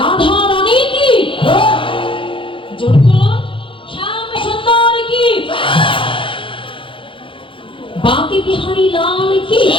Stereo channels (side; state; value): right; late; 0.25 ms